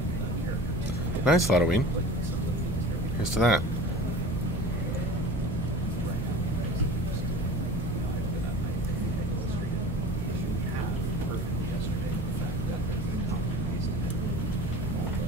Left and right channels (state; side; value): normal; both; correlation 0.38